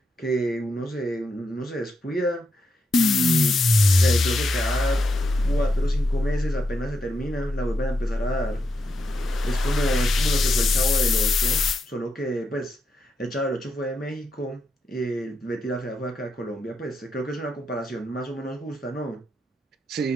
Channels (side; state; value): both; normal; correlation 0.83